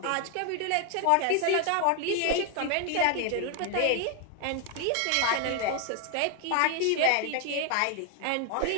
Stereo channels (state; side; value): different; both; correlation 0.01